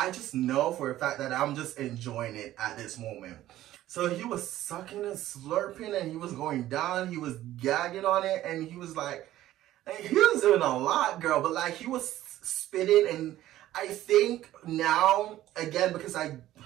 just know for a fact that I'm just enjoying it at this moment. So he was sucking and slurping and he was going down. He was gagging on it and he was like, he was doing a lot, girl, but like he was spitting. And I think now, again, because I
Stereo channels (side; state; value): left; quieter; 14.1 dB